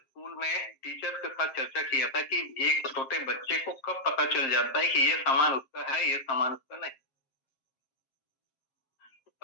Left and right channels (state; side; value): late; right; 7.5 ms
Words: में टीचर के साथ चर्चा किया था कि एक छोटे बच्चे को कब पता चल जाता है कि ये सामान उसका है, ये सामान उसका नहीं। तो